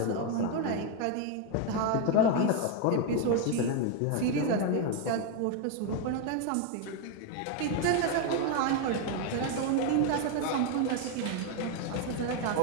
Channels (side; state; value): both; different; correlation 0.01